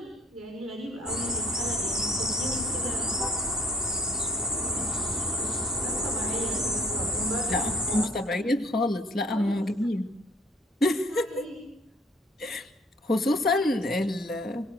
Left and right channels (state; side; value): normal; both; correlation 0.58